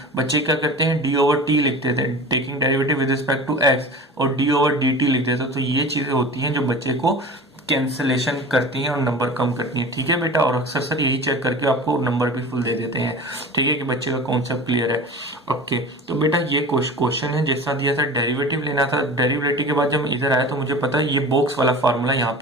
बच्चे क्या करते हैं, डी ओवर टी लिखते थे, taking derivative with respect to X, और डी ओवर डी टी लिखते थे। तो ये चीजें होती हैं जो बच्चे को कैंसलेशन करती हैं और नंबर कम करती हैं। ठीक है बेटा, और अक्सर सर यही चेक करके आपको नंबर भी फुल दे देते हैं। ठीक है, कि बच्चे का कॉन्सेप्ट क्लियर है। ओके, तो बेटा ये क्वेश्चन है जैसा दिया था, डेरिवेटिव लेना था। डेरिवेटिव के बाद जब मैं इधर आया तो मुझे पता है ये बॉक्स वाला फार्मूला यहाँ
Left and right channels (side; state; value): both; normal; correlation 0.36